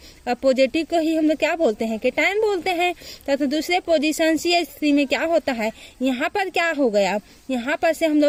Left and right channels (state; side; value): identical; both; correlation 1.00